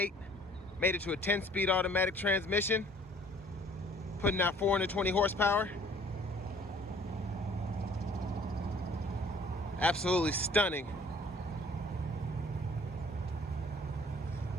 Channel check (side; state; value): both; normal; correlation 0.55